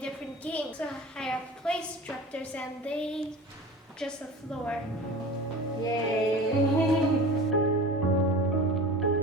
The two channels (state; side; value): normal; both; correlation 0.37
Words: games. So I have play instructors and they just the floor. Yay!